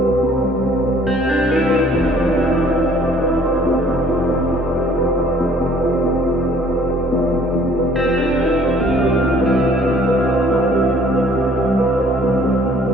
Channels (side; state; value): both; normal; correlation 0.57